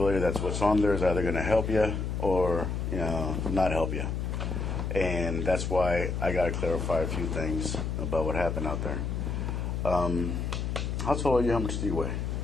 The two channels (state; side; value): noise; left; hum, 2 dB below the sound